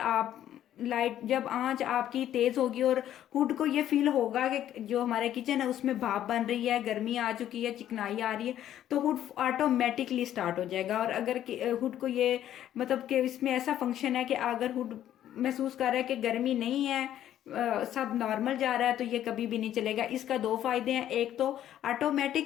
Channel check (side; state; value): right; quieter; 11.6 dB